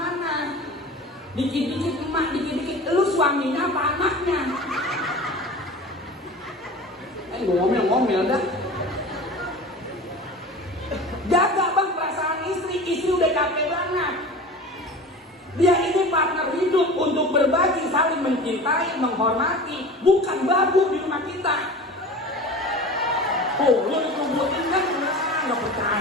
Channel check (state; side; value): normal; both; correlation 0.36